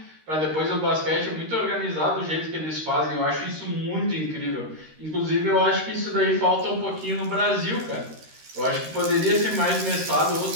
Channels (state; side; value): late; left; 13 ms